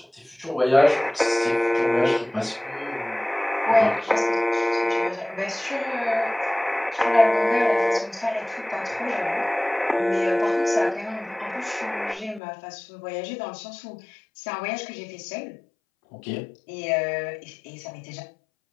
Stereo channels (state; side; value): drops out; right; at 12.4 s